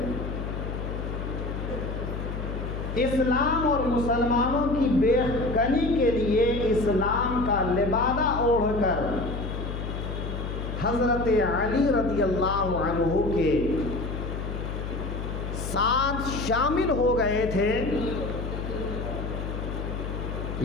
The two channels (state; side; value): noise; left; hum, 5 dB below the sound